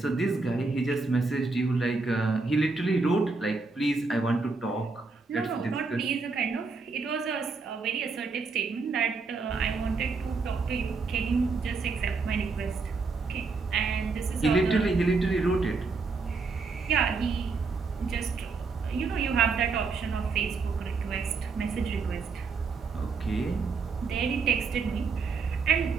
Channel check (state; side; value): quieter; left; 4.3 dB